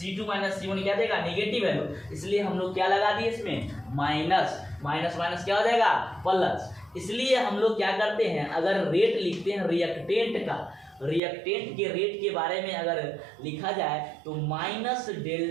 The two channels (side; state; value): left; drops out; at 11.2 s